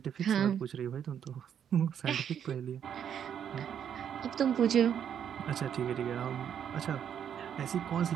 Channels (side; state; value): left; quieter; 8.7 dB